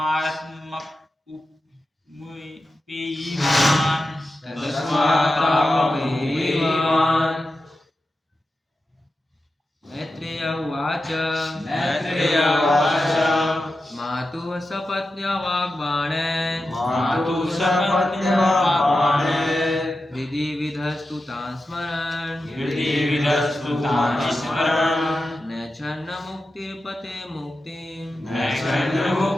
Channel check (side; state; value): both; normal; correlation 0.91